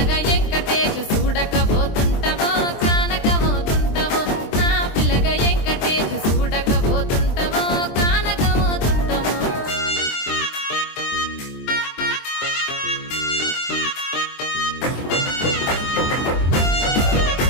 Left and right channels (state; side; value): late; right; 23 ms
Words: వెంకటేశు చూడకపోతుంటవో కానకపోతుంటవో నా పిలగా వెంకటేశు చూడకపోతుంటవో కానకపోతుంటవో